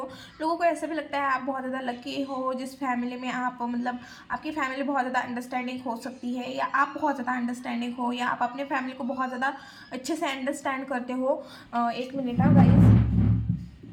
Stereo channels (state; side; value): identical; both; correlation 1.00